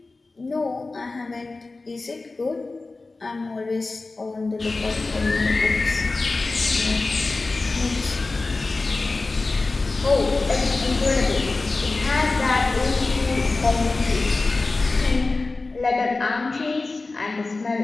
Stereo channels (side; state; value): right; quieter; 3.5 dB